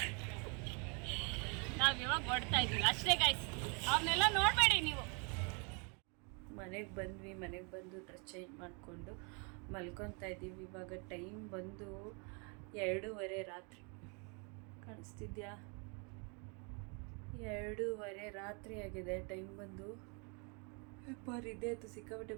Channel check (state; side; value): quieter; left; 34.7 dB